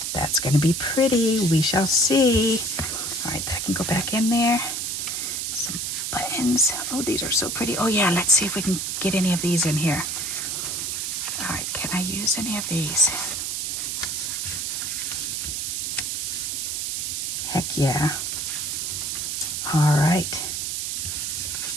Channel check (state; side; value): noise; right; hiss, 2 dB below the sound